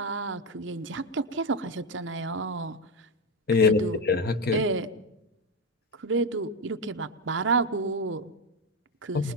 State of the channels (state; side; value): normal; both; correlation 0.11